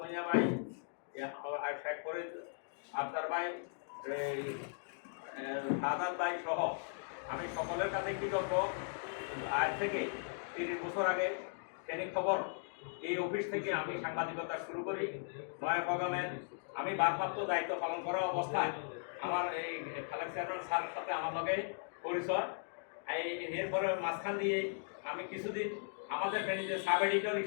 ভাই, শেখ ফরিদ আফতার ভাই, শাহাদাত ভাই সহ আমি সকলের কাছে কৃতজ্ঞ। আজ থেকে 30 বছর আগে ফেনী খবর এই অফিস থেকে আমি সাংবাদিকতা শুরু করি। নয়াপগামের আমি ভারপ্রাপ্ত দায়িত্ব পালন করা অবস্থায় আমার এই খালেক চেয়ারম্যান স্যারের সাথে আমার লগে পরিচয়। এরপরে মাঝখান দিয়ে আমি কিছুদিন আমাদের ফেনীতে সাব এডিটর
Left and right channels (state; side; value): silent; right; digital silence